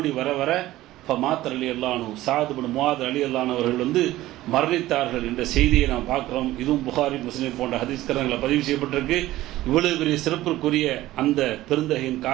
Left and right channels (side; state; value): left; quieter; 16.0 dB